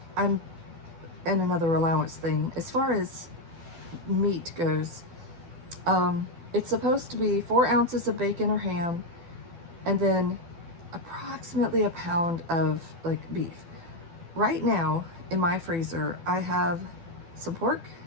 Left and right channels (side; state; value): left; late; 12 ms